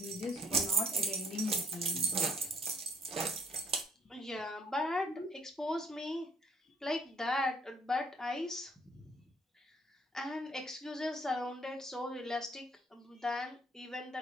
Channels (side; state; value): both; normal; correlation 0.62